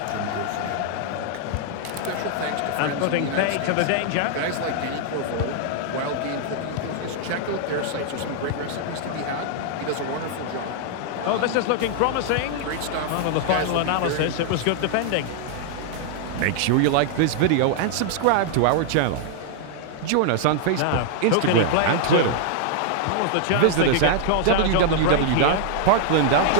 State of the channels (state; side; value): different; both; correlation 0.00